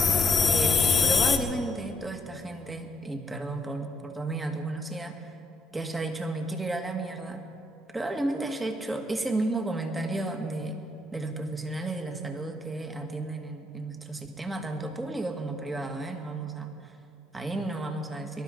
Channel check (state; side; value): normal; both; correlation 0.71